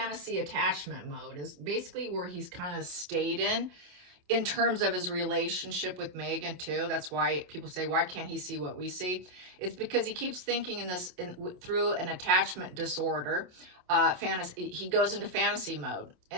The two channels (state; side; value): late; left; 28 ms